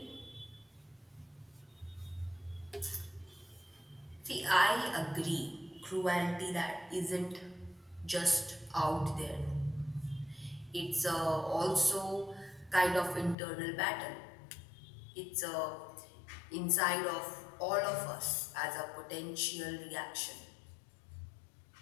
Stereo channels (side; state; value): right; drops out; at 13.4 s